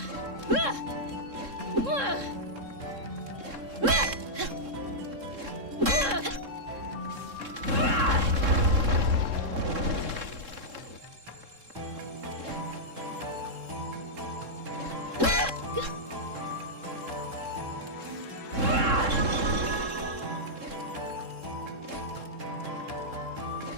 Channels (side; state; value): left; late; 3.7 ms